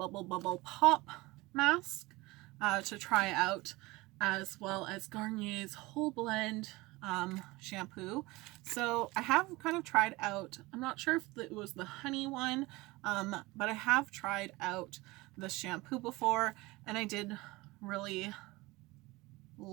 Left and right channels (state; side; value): quieter; left; 21.7 dB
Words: Pop mask to try out, as well as Garnier's Whole Blend shampoo. So I have kind of tried out, I'm not sure if it was the honey one, but I have tried out the shampoo before, and I did really